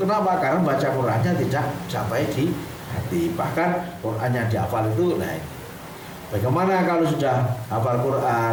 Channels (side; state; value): both; identical; correlation 1.00